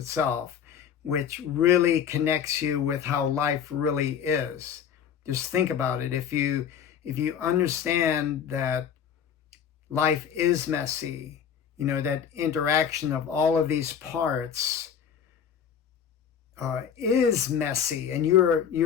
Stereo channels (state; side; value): quieter; right; 8.0 dB